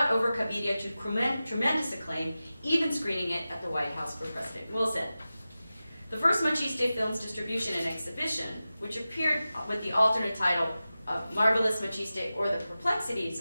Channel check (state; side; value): inverted; both; correlation -0.95